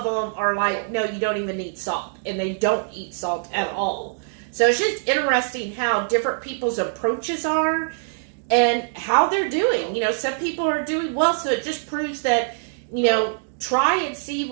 them are like, no, you don't even need salt. And they don't eat salt at all. So it's just interesting how different people's approaches are and how they're doing. You know, some people are doing well, so it just proves that, you know, try and see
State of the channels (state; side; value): silent; left; digital silence